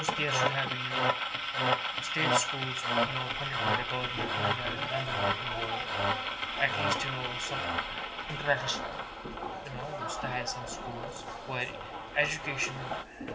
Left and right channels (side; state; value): both; identical; correlation 1.00